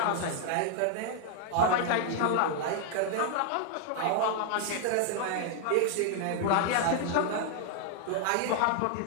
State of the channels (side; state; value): both; different; correlation 0.00